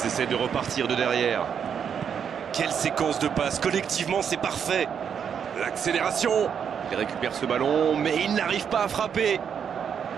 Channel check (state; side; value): quieter; left; 7.6 dB